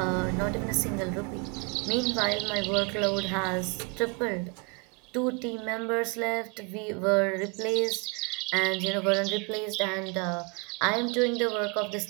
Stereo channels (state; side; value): quieter; left; 31.4 dB